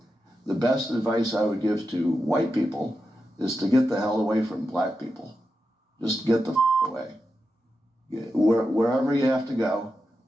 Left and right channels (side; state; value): both; normal; correlation 0.89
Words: the best advice I would give to white people is to get the hell away from black people. Just get the away. Wherever you have to go,